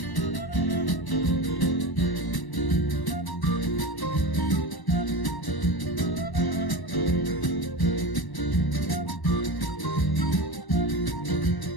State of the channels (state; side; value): late; right; 1.0 ms